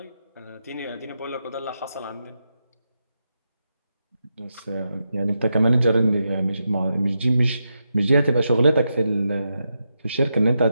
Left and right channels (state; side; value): inverted; both; correlation -0.86